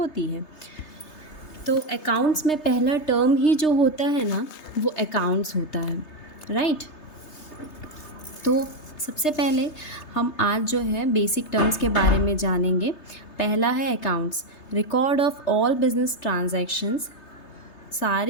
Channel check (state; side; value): late; right; 3.3 ms